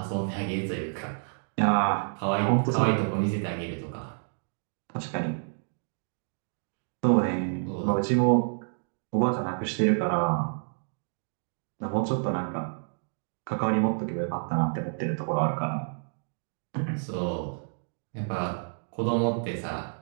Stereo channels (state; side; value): silent; left; digital silence